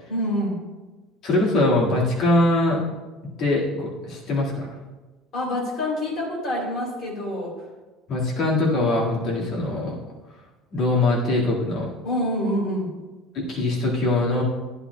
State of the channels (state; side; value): normal; both; correlation 0.40